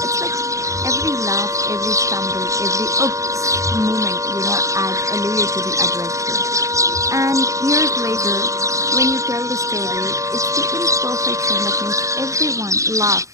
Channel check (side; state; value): left; late; 0.15 ms